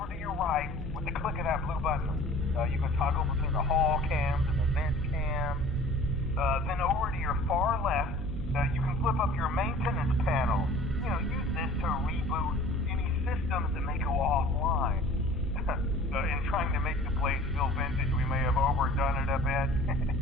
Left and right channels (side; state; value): left; noise; hum, 13 dB below the sound